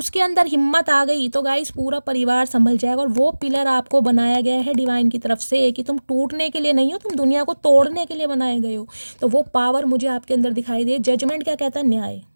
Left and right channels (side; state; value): both; inverted; correlation -1.00